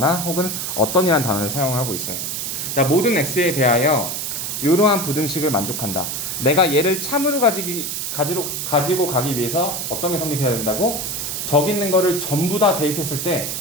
혹은 어떤이란 단어를 사용하고 있어요. 자, 모든 x에 대하여 이러한 부등식을 만족한다. 내가 얘를 참으로 가지고 가기 위해서 어떤 게 성립해야 된다고? 저기 있는 거를 전부 다 대입했을 때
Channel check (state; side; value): noise; right; hiss, 3 dB below the sound